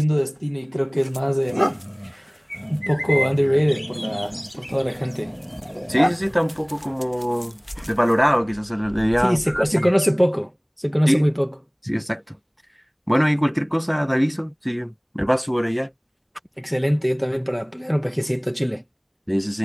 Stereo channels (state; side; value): identical; both; correlation 1.00